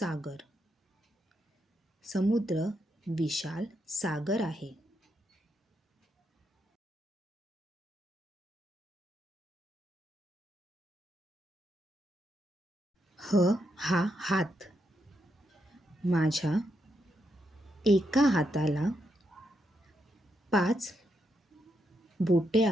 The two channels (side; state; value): both; normal; correlation 0.81